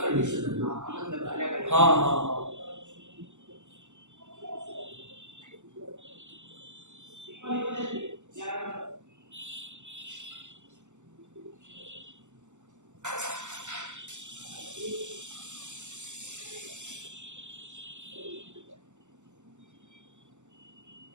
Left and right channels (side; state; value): left; late; 0.84 ms